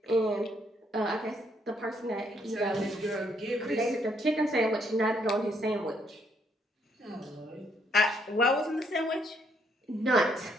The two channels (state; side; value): normal; both; correlation 0.71